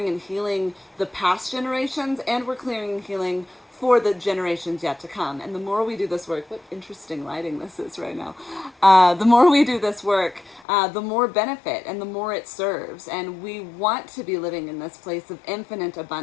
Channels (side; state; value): right; drops out; at 10.7 s